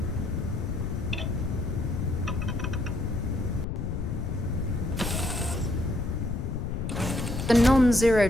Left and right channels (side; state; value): left; noise; rumble, 3 dB below the sound